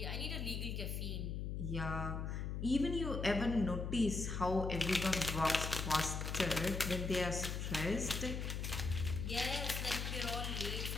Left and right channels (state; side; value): noise; left; hum, 3 dB below the sound